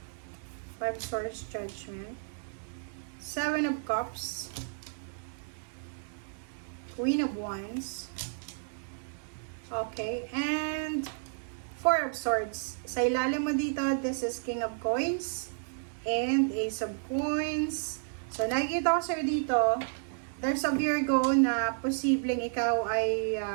5 Swords, Judgment. 7 of Cups. Queen of Wands. Okay. And 4 of Swords. Sa ilalim mo dito, this is King of Coins. And Ace of Coins. So, nakikita ko sa'yo dito, there's a Virgo na posibleng ikaw ay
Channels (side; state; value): left; silent; digital silence